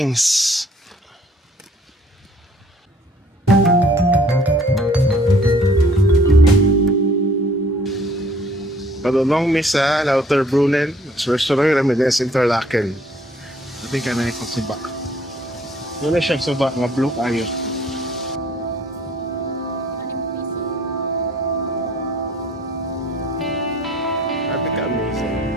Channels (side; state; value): both; normal; correlation 0.58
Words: Padulong mi sa Lauterbrunnen. Restaurant kami din sa Interlaken. Sabi ka na ikong suba. Wala siyang suba, nga blue kayo. Sabi ka amazing.